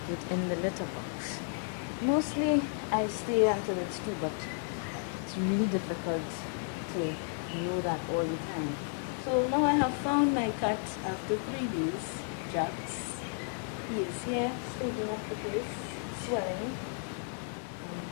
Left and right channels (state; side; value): silent; right; 56 dB below the other